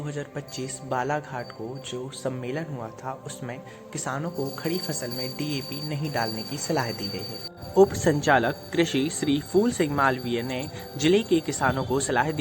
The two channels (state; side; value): identical; both; correlation 1.00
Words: बालाघाट को जो सम्मेलन हुआ था, उसमें किसानों को खड़ी फसल में डीएपी नहीं डालने की सलाह दी गई है। उप संचालक कृषि श्री फूल सिंह मालवीय ने जिले के किसानों को सलाह